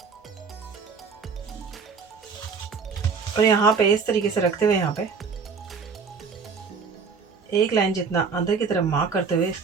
और यहाँ पे इस तरीके से रखते हुए यहाँ पे एक लाइन जितना अंदर की तरफ मार्क करते हुए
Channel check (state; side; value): quieter; left; 5.4 dB